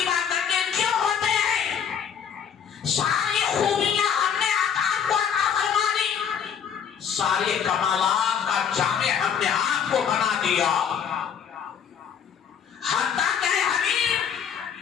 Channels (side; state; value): right; quieter; 7.9 dB